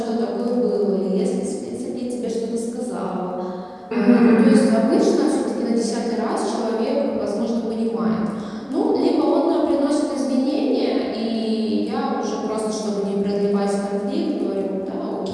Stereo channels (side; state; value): both; identical; correlation 1.00